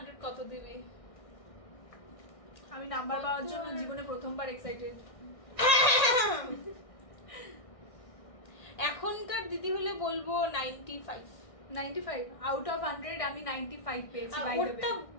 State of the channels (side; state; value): right; late; 1.6 ms